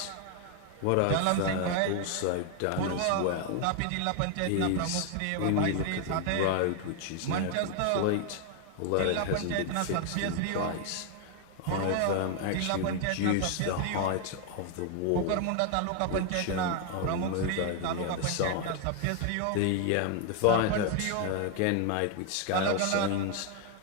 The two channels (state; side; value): different; both; correlation 0.00